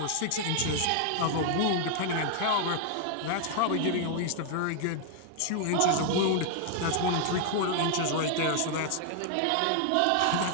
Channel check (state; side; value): different; both; correlation 0.00